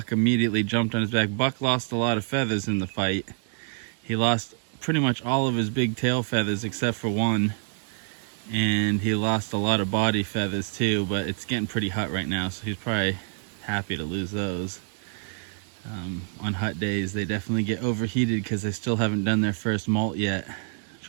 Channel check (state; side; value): silent; left; digital silence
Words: immediately jumped on his back. Buck lost a lot of feathers in the fight. He lost pretty much all of his big tail feathers except for one, and he lost a lot of body feathers too, but it's getting pretty hot right now, so he's probably happy to lose those. On hot days they definitely get overheated because they still haven't done their first molt yet, which